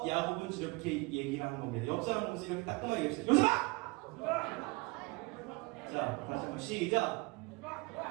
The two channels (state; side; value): quieter; left; 25.3 dB